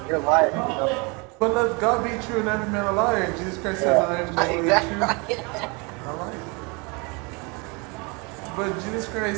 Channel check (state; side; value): quieter; left; 30.1 dB